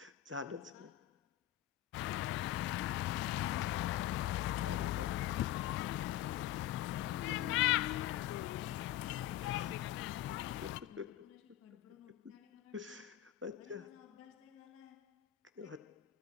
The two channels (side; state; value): right; quieter; 13.6 dB